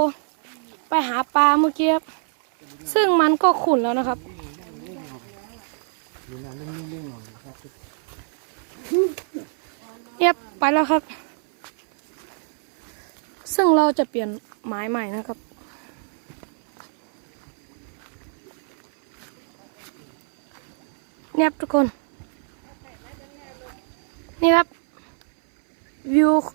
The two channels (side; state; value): left; silent; 59 dB below the other